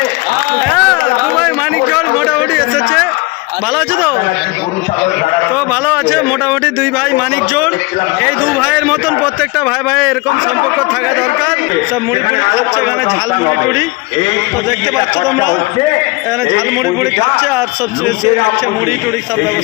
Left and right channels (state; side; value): quieter; right; 24.5 dB